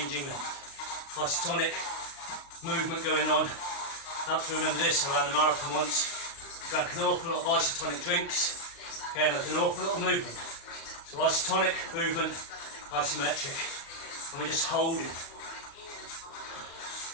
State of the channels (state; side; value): late; right; 36 ms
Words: length. Isotonic. Movement going on. I have to remember this, I ran the marathon once. Drank an awful lot of isotonic drinks. Okay, and there was an awful lot of movement. So isotonic, movement, isometric. And we're just holding.